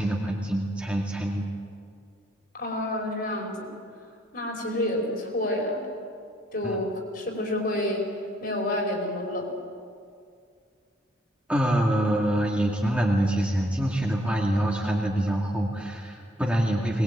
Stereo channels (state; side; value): normal; both; correlation 0.67